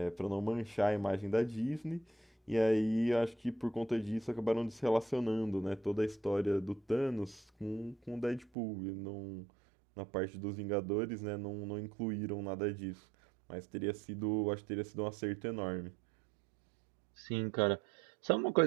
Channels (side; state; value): left; drops out; at 8.5 s